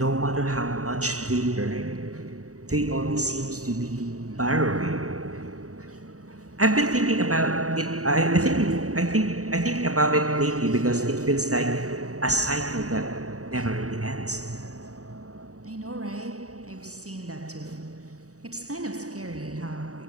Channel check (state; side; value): late; left; 0.66 ms